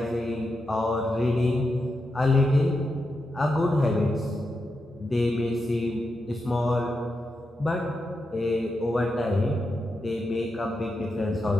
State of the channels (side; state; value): both; normal; correlation 0.87